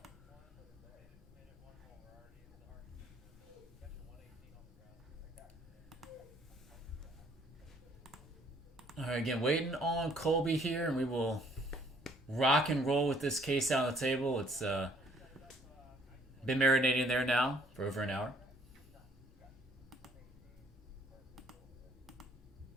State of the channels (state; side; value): normal; both; correlation 0.62